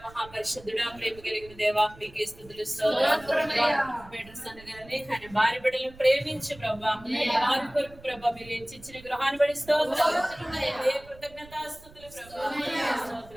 మహాపరిశుద్ధుడా ప్రేమ కలిగిన దేవా మీకే స్తుతులు గారిని ఆయన భార్య బిడ్డలను ప్రేమించి ప్రభా వారి కొరకు ప్రభా మీరు ఇచ్చిన గృహాన్ని బడి స్తోత్రాలు కృతజ్ఞతాస్తుతులు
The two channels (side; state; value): right; noise; rumble, 21 dB below the sound